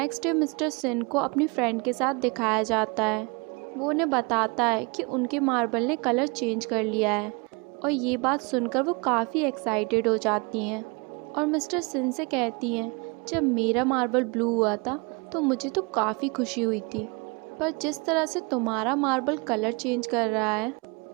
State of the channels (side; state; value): left; quieter; 29.9 dB